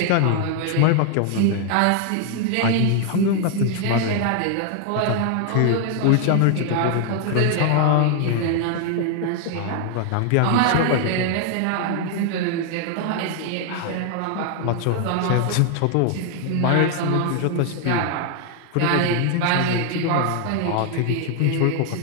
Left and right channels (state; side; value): different; both; correlation 0.00